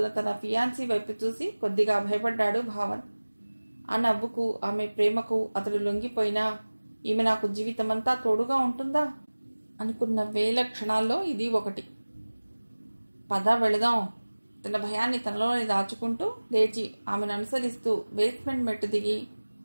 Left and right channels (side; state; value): both; inverted; correlation -1.00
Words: తన ఫియాన్సీ వైపు చూసి కొద్దిగా భయపడ్డాడు భావన్. ఆ నవ్వుకు, ఆమె ప్రేమకు అతడు లొంగిపోయినా ఈమె నాకు జీవితమంతా తోడుగా ఉంటుందా అనుకున్న వేల క్షణాల్లో ఇది ఒకటి. పద వెళదాం. తన భయాన్ని తనలోనే దాచుకుంటూ లేచి ఆమెను అనుసరిస్తూ బేస్మెంట్ మెట్టు దిగి